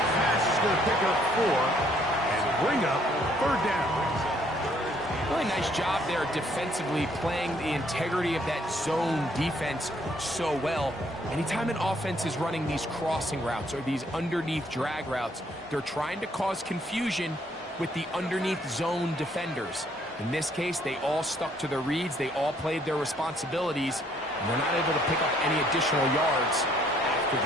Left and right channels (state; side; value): normal; both; correlation 0.66